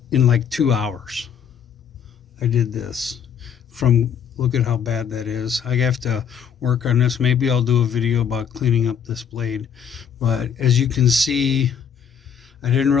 in like 2 hours. I did this from, look at how bad that is. I have to work on this. Maybe I'll do a video about cleaning up this blade. But as you can see, I didn't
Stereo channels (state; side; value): quieter; right; 7.8 dB